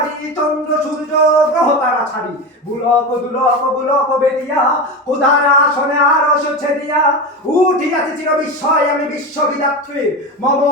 চন্দ্র সূর্য গ্রহ তারা ছাড়ি বুলক দুলক বুলক বেদিয়া উদারা আসনে আরশ ছেদিয়া উঠিয়াছে চির বিস্ময় আমি বিশ্ববিদাত্রী মম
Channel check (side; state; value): both; normal; correlation 0.21